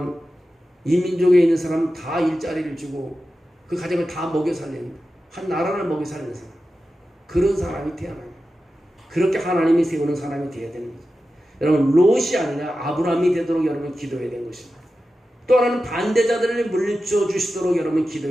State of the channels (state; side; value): normal; both; correlation 0.92